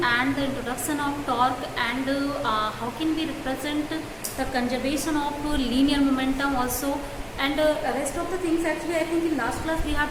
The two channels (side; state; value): both; identical; correlation 1.00